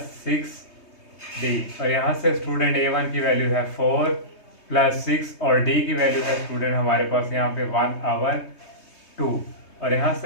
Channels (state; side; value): late; right; 3.2 ms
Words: 6D, और यहाँ से स्टूडेंट A1 की वैल्यू है 4 प्लस 6 और D की वैल्यू है स्टूडेंट हमारे पास यहाँ पे 1/2, और यहाँ